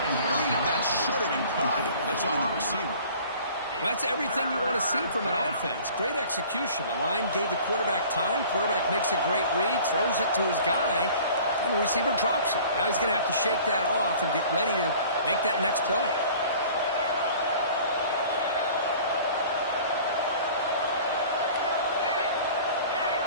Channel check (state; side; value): inverted; both; correlation -0.47